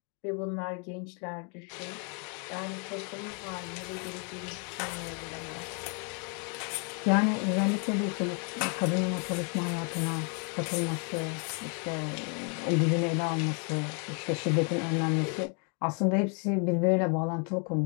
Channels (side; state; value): right; quieter; 39.0 dB